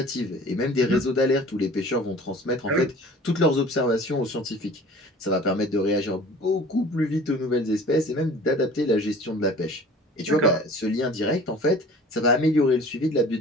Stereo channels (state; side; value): normal; both; correlation 0.45